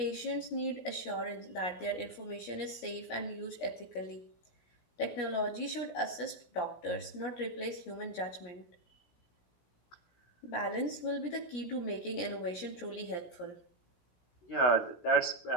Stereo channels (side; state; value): right; late; 17 ms